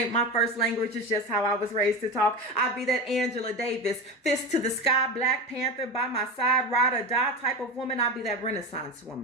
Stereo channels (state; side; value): normal; both; correlation 0.22